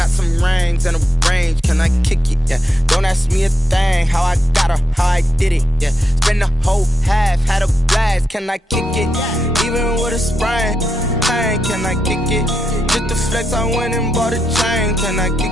some rings and a range. Can I kick it? Yeah. Don't ask me a thing. How I got her, how I did it. Yeah. Spend the whole half, had a blast. Can I kick it? Even with a sprain. Pain, can I kick it? Just the flex, I went and bought a chain. Can I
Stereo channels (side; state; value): both; normal; correlation 0.84